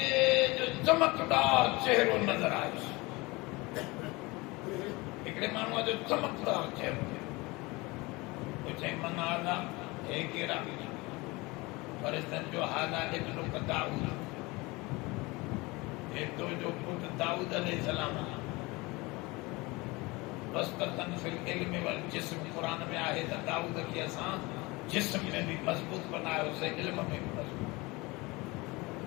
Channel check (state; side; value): quieter; right; 23.7 dB